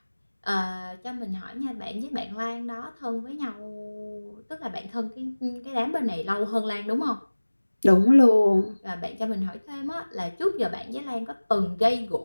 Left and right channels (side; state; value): both; inverted; correlation -1.00